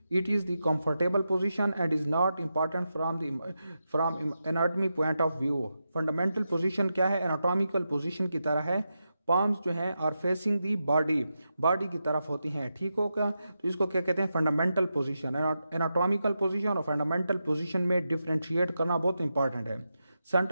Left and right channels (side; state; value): both; inverted; correlation -0.88